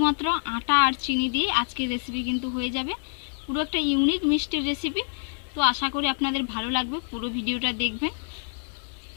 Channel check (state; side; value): silent; right; digital silence